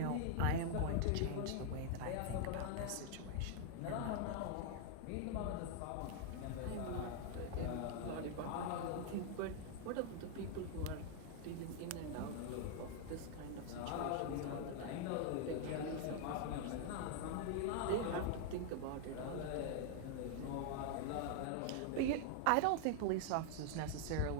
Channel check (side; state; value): both; different; correlation 0.00